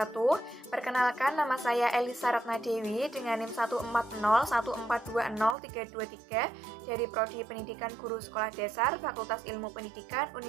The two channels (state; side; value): drops out; left; at 5.6 s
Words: Perkenalkan, nama saya Elisa Ratnadewi dengan NIM 14014203223 dari Prodi Pendidikan Guru Sekolah Dasar Fakultas Ilmu Pendidikan